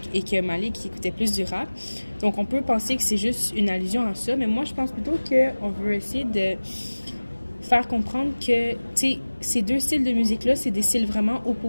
et que Malik écoutait plus du rap. Donc on peut penser que c'est juste une allusion à ça, mais moi, je pense plutôt qu'on veut essayer de faire comprendre que, tu sais, ces deux styles de musique-là, c'est des styles vraiment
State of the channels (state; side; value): inverted; both; correlation -1.00